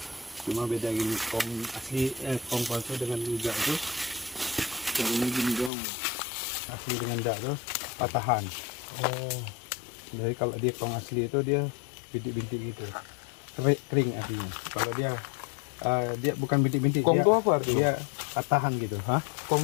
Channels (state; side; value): drops out; right; at 5.7 s